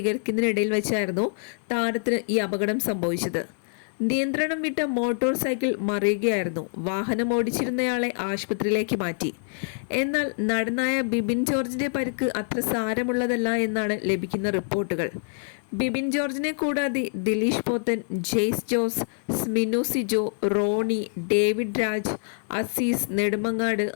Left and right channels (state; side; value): silent; right; 61 dB below the other